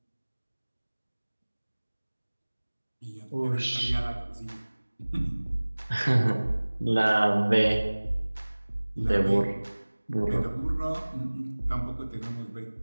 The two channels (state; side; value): inverted; both; correlation -1.00